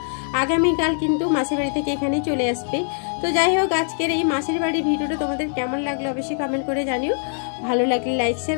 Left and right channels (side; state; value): right; silent; digital silence